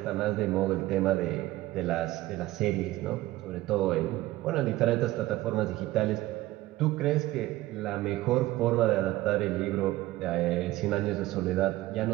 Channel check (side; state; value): left; quieter; 17.1 dB